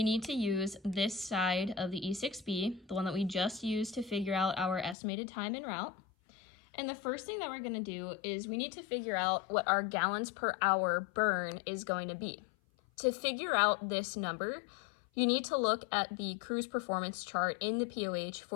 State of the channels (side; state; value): right; drops out; at 5.0 s